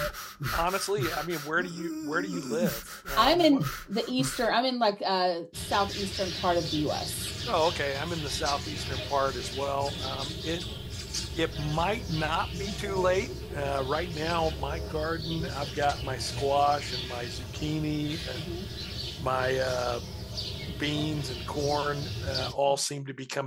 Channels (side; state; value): both; identical; correlation 1.00